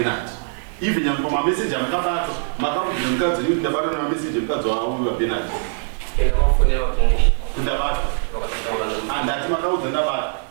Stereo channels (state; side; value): silent; left; digital silence